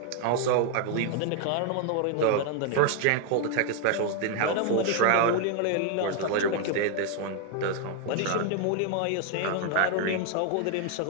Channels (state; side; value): different; both; correlation 0.00